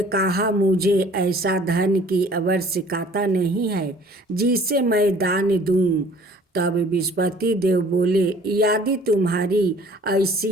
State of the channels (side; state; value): both; normal; correlation 0.52